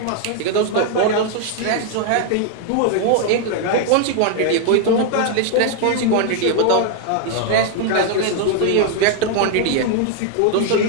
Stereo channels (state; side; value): different; both; correlation 0.00